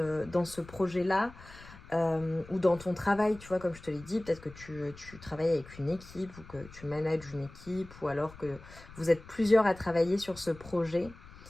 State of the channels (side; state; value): left; noise; rumble, 18 dB below the sound